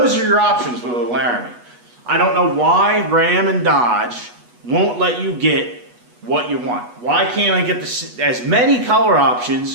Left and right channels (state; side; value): late; left; 8.2 ms